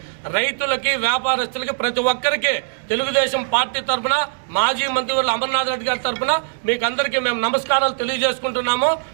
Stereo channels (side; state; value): left; silent; 65 dB below the other